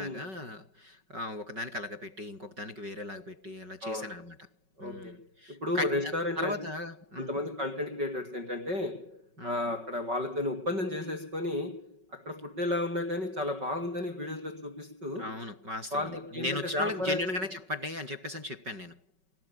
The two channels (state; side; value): late; left; 5.3 ms